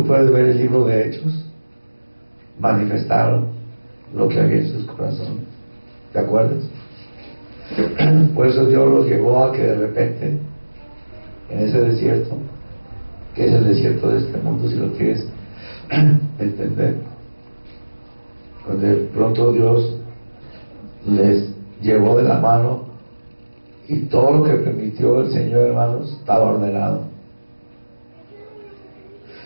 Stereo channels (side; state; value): both; inverted; correlation -1.00